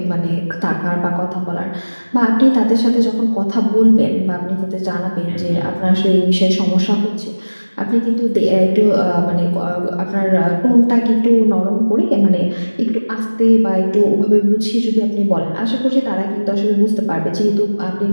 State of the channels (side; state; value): both; inverted; correlation -1.00